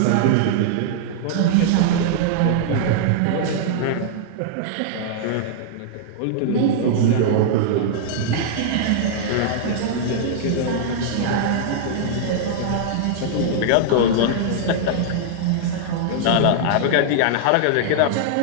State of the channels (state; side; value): different; both; correlation -0.01